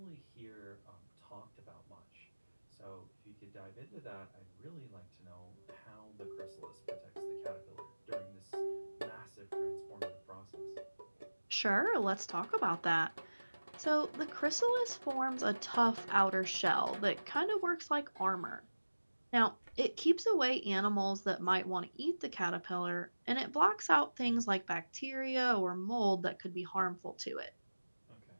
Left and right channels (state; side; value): inverted; both; correlation -1.00